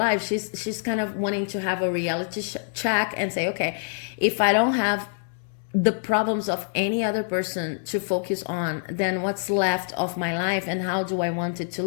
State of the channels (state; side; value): silent; right; 61 dB below the other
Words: She's kind of wanting to have a reality check and say, okay, if I don't have the problems of any other person to focus on, then what's left of my life, and how do I want it to